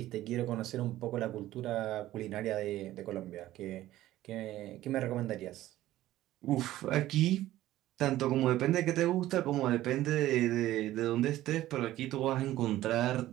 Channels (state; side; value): quieter; left; 14.8 dB